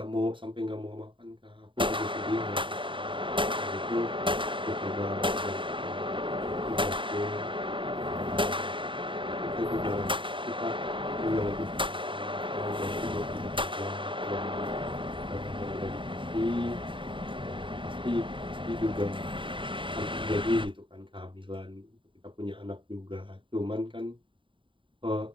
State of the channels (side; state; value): left; late; 0.24 ms